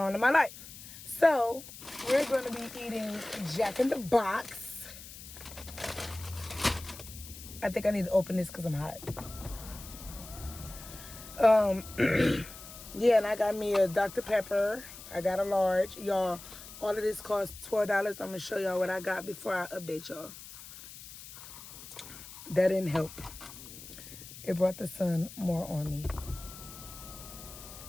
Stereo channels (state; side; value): noise; left; hiss, 15 dB below the sound